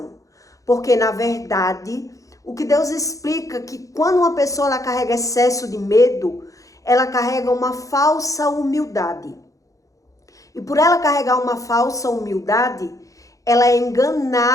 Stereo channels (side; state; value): right; late; 0.16 ms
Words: Porque, na verdade, o que Deus explica é que quando uma pessoa ela carrega excesso de medo, ela carrega uma falsa humildade. E por ela carregar uma falsa humildade, ela é